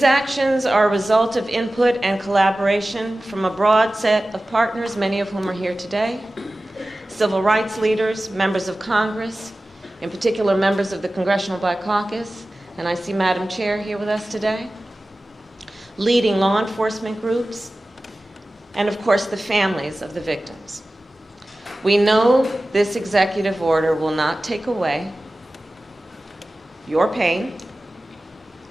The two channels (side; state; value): both; normal; correlation 0.96